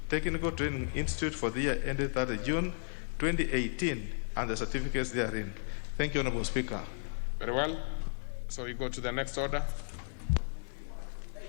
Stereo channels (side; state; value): right; silent; 55 dB below the other